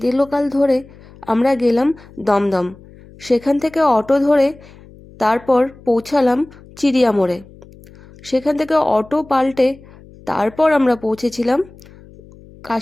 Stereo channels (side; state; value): left; noise; hum, 23 dB below the sound